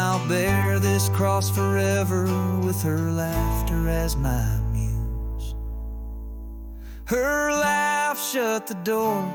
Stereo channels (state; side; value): identical; both; correlation 1.00